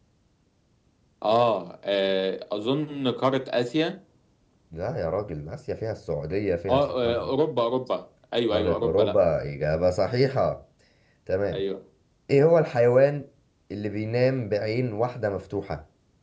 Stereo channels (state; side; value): identical; both; correlation 1.00